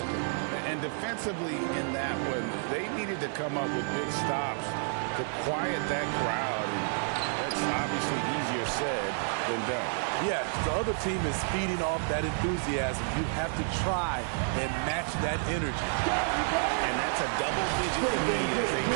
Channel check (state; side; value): silent; left; 58 dB below the other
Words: And defensively in that one, they needed to come up with big stops to quiet that crowd. And that's obviously easier said than done. Yes, the other team is feeding off that enthusiasm. You have to try and match that energy. And that's a double-digit lead as they